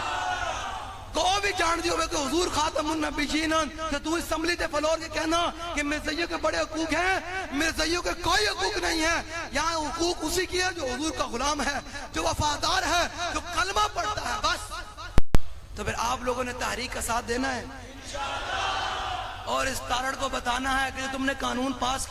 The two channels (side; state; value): both; identical; correlation 1.00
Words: گو بھی جان دی ہوئے کہ حضور خاتم النبیین تو تو اسمبلی تے فلور کے کہنا کہ مرزائیوں کے بڑے حقوق ہیں مرزائیوں کے کوئی حقوق نہیں ہے یہاں حقوق اسی کی ہے جو حضور کا غلام ہے جو وفادار ہے جو کلمہ پڑھتا ہے بس تو پھر آپ لوگوں نے تحریک کا ساتھ دینا ہے اور اس تارڑ کو بتانا ہے کہ تم نے قانون پاس